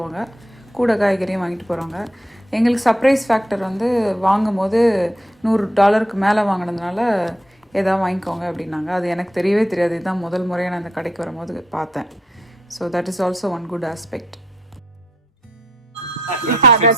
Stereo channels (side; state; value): both; normal; correlation 0.73